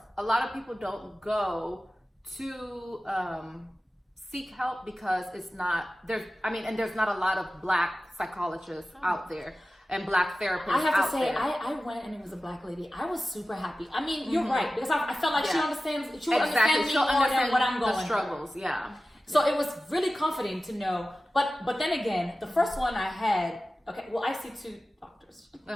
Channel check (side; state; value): both; normal; correlation 0.95